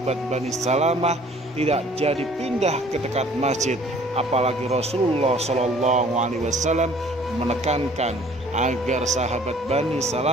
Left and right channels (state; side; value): normal; both; correlation 0.54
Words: Bani Salamah tidak jadi pindah ke dekat masjid. Apalagi Rasulullah SAW menekankan agar sahabat Bani